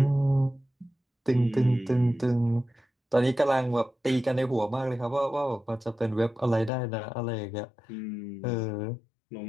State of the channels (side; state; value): right; drops out; at 6.7 s